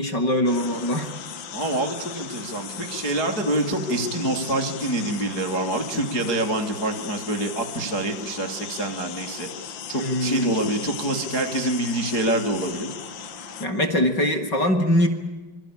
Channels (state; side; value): late; right; 4.8 ms